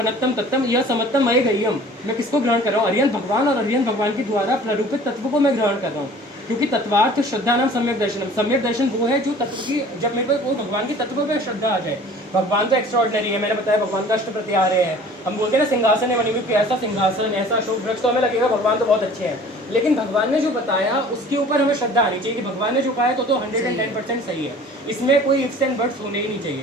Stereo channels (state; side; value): normal; both; correlation 0.47